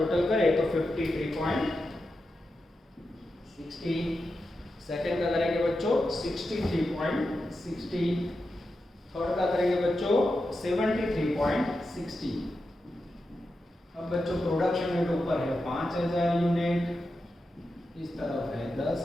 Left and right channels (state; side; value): normal; both; correlation 0.89